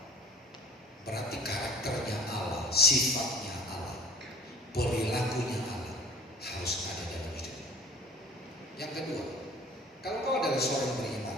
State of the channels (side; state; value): both; normal; correlation 0.46